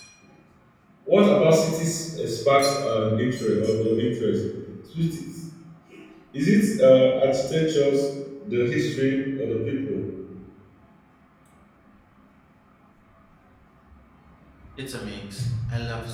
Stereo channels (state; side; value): identical; both; correlation 1.00